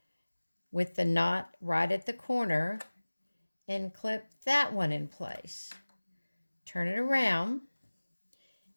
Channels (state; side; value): inverted; both; correlation -1.00